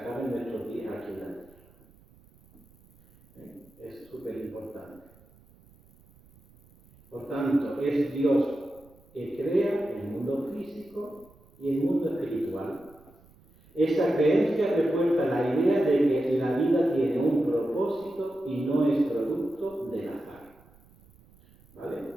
nuestros días aquí en la tierra. Es súper importante. Por tanto, es Dios que crea el mundo físico y el mundo espiritual. Esta creencia refuerza la idea de que la vida tiene un propósito y no es producto del azar, ¿vale?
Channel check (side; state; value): right; noise; rumble, 28 dB below the sound